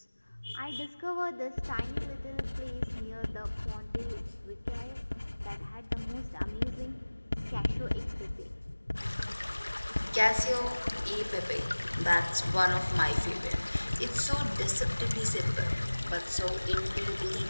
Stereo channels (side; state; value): both; inverted; correlation -1.00